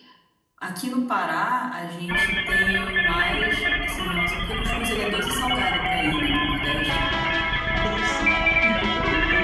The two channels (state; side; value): identical; both; correlation 1.00